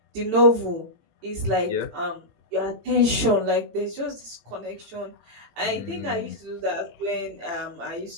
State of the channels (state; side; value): late; left; 18 ms